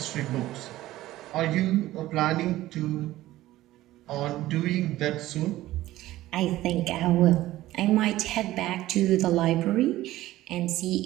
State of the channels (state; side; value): quieter; left; 15.8 dB